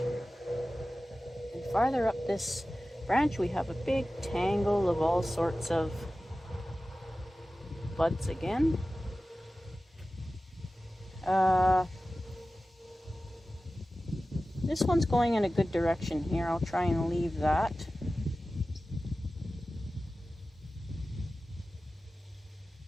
And farther up this branch we have a big tangle of all sorts of buds again. This one's going in a good direction here. I'll try and leave that.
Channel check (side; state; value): both; normal; correlation 0.95